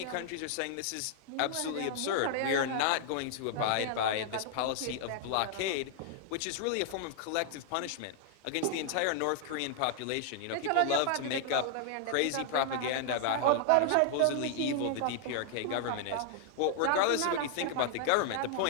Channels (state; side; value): different; both; correlation 0.00